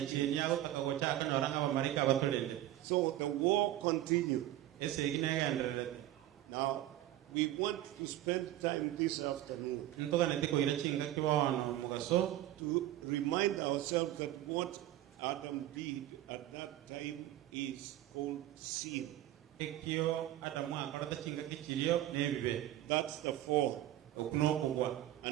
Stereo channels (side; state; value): left; quieter; 13.8 dB